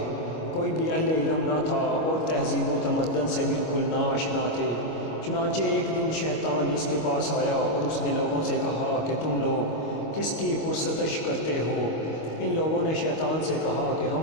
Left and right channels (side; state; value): right; late; 25 ms